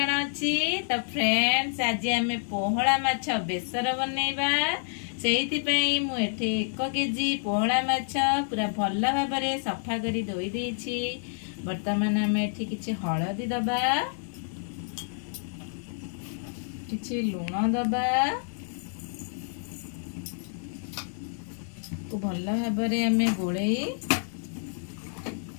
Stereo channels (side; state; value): right; silent; digital silence